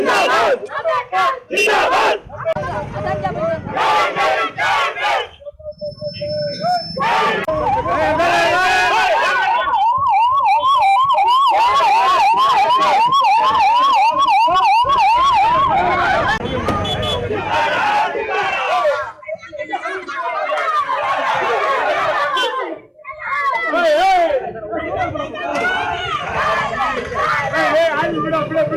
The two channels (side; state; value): both; identical; correlation 1.00